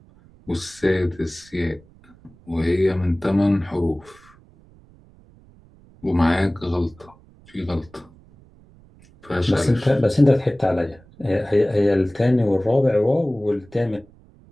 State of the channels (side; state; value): right; noise; rumble, 27 dB below the sound